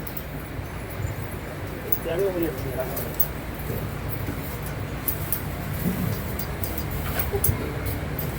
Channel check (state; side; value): identical; both; correlation 1.00